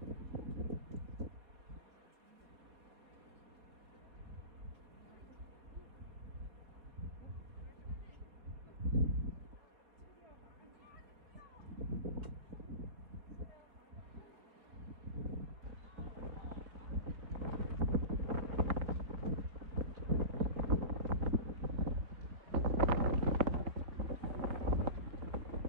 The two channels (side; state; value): left; late; 4.0 ms